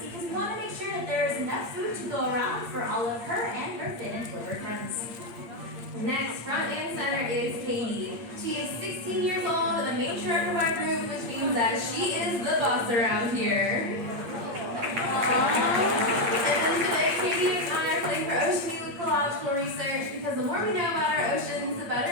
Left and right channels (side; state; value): left; late; 8.6 ms